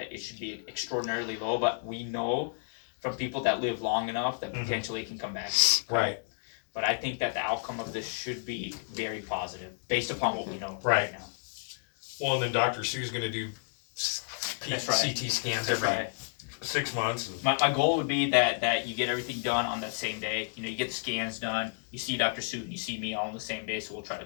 it should be extraordinarily low, but we know from people that live long enough that potentially it can come back. Right. But I think that the outcome of this should be very positive based upon what we know Right. now. Well, and then Dr. Sue's going to do That's right. CT scans That's every right. 6 months. And My goal would be that you get everything done on that same day. You know, you get the scans done, you see Dr. Sue, and you see me all on the same day, so we'll try to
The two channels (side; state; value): right; silent; digital silence